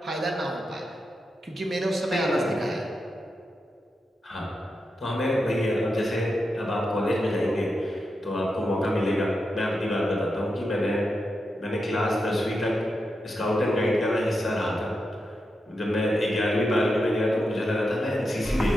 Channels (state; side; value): normal; both; correlation 0.87